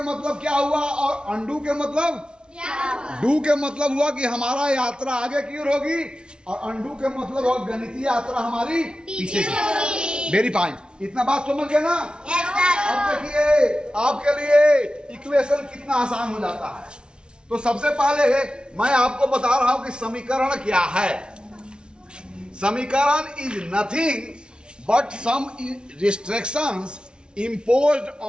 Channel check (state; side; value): late; left; 0.055 ms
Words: मतलब क्या हुआ और अनडू के मतलब? डू के मतलब हुआ कि हमारा यात्रा आगे की ओर होगी, और अनडू के मतलब हुआ गणितीय यात्रा हमारी पीछे की। Very fine. इतना बात समझ गए ना? अब देखिए आपके लिए इक्वेशन कितना आसान हो जाता है। तो सबसे पहले मैं आपको बता रहा हूं कि समीकरण क्या है। समीकरण is nothing but some restrictions imposed